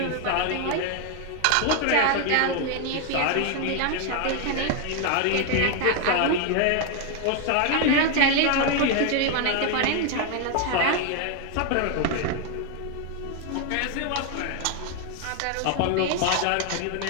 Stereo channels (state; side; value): different; both; correlation 0.01